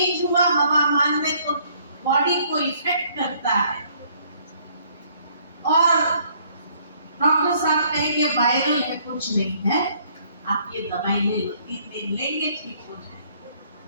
हुआ हवामान में तो बॉडी को इफेक्ट करता है और डॉक्टर साहब कहेंगे वायरल है, कुछ नहीं है, आप ये दवाई ले लो, 3 दिन लेंगे ठीक हो जाए।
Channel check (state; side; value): inverted; both; correlation -0.63